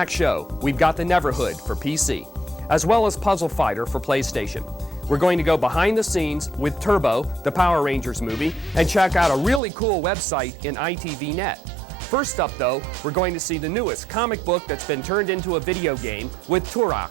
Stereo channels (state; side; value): drops out; left; at 9.6 s